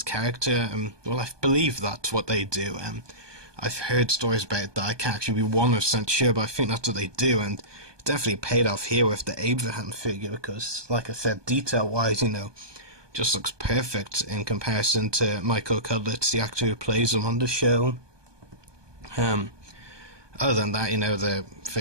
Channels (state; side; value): late; left; 1.2 ms